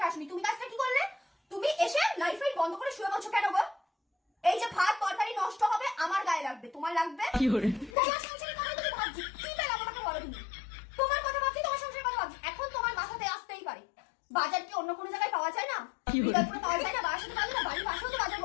আসনি। তুমি কাজটা কি করলে? তুমি এসে লাইট ফাইট বন্ধ করে শুয়ে বলছো কেন গো? এই যে ভাত তরকারি নষ্ট হবে আমার গায়ে লাগবে, তোমার লাগবে? তোমার সংসারের কথা তুমি ভাবছি, কি পেলাম আমাকে বলো তুমি? তোমার কথা ভাবছি, তোমার সংসারের কথা ভাবছি, এখন তোমার মাথাতে আসতেই পারে বাজার কি অন্য কোনো জায়গায় পাওয়া যায় না? বিকল্পে পাওয়া যায় না? বাসাতে পাওয়া যায় না? বাড়ির পাশেও তো বাজার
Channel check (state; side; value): drops out; right; at 7.9 s